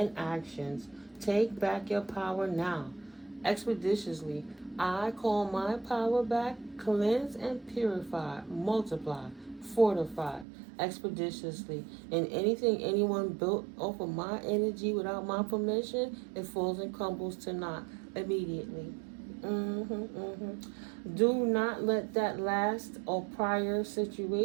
actions. Take back your power now. Expeditiously, I call my power back, cleanse and purify, multiply, fortify, expeditiously. And anything anyone built off of my energy without my permission, it falls and crumbles to naught immediately. Do not let that last or prior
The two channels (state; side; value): drops out; left; at 10.5 s